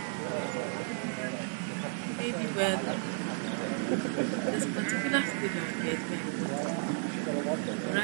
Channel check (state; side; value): silent; left; 56 dB below the other